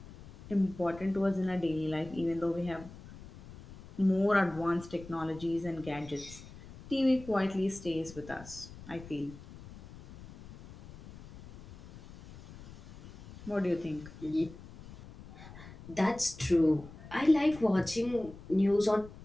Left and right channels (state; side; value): noise; left; rumble, 17 dB below the sound